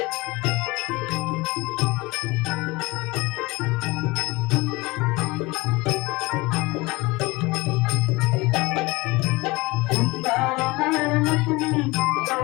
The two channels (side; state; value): right; quieter; 22.8 dB